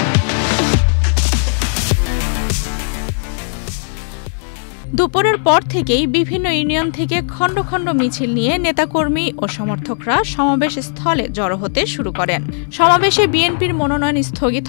দুপুরের পর থেকেই বিভিন্ন ইউনিয়ন থেকে খণ্ড খণ্ড মিছিল নিয়ে নেতাকর্মী ও সমর্থকরা সমাবেশ স্থলে জড়ো হতে শুরু করেন। সমাবেশে বিএনপির মনোনয়ন স্থগিত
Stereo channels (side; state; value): right; silent; 65 dB below the other